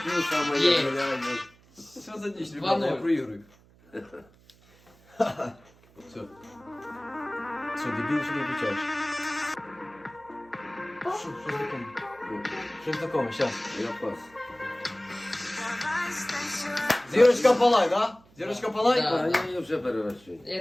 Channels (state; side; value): noise; right; hum, 28 dB below the sound